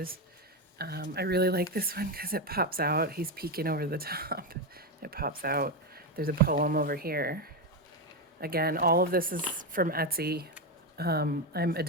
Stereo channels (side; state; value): both; normal; correlation 0.10